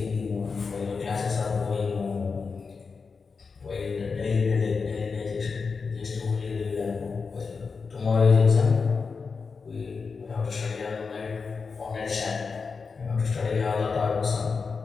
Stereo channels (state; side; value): quieter; right; 5.0 dB